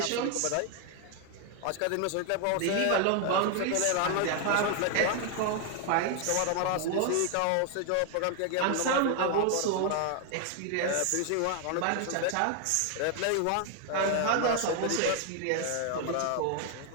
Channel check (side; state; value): both; different; correlation 0.00